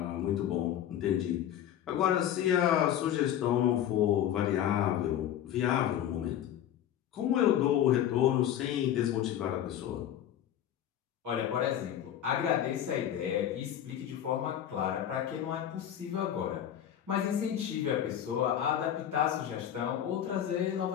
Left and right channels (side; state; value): right; quieter; 10.7 dB